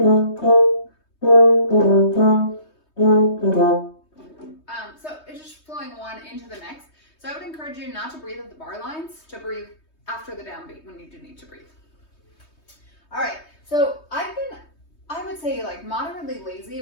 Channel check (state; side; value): late; right; 3.2 ms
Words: So it's just flowing one into the next. So I would encourage you not to breathe at the bar lines, to breathe after the downbeat when you do need to breathe. All right, so I've been, I would say, like moderately lazy